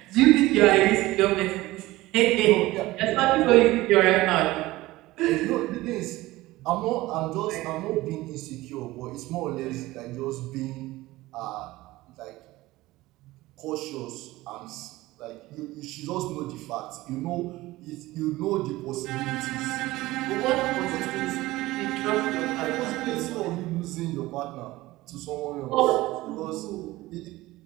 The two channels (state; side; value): quieter; left; 18.4 dB